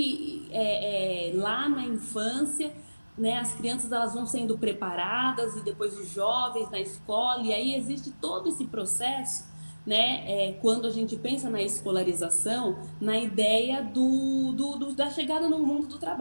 lá na infância, né, as crianças elas vão sendo preparadas e depois os jovens na escola, e aí existe todo esse processo, né, quando a gente pensa na escolarização, na ideia da chegada no mundo do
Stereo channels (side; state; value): both; inverted; correlation -1.00